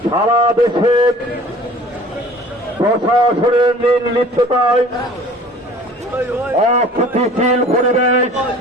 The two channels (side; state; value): both; normal; correlation 0.47